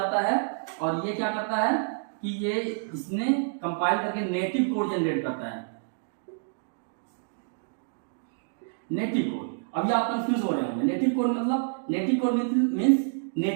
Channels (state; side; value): silent; left; digital silence